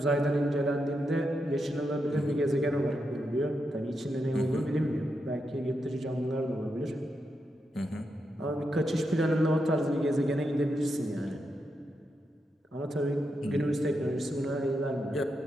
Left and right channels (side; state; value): both; normal; correlation 0.85